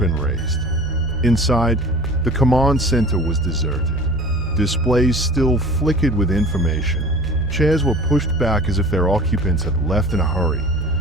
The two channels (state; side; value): normal; both; correlation 0.42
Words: raised. Inside, the command center was deserted. Displays still flickered with information. Chairs were pushed back as if their occupants had left in a hurry,